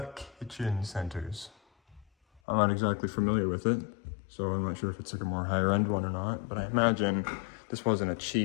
Kitchen Centers. I'm not exactly familiar with it, so I'm not sure if it's like a more higher end one or not, but I imagine this wasn't a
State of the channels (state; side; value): drops out; right; at 2.4 s